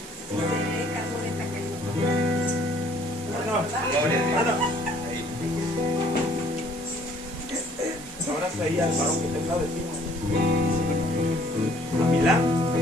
Un abrazo ahí al varón que está al lado de ti. A Milán.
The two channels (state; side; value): noise; right; hiss, 16 dB below the sound